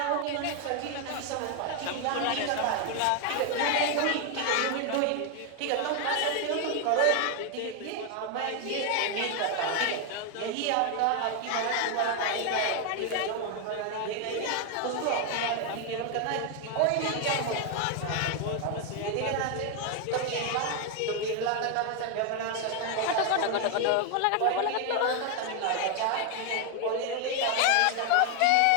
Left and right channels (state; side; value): different; both; correlation 0.01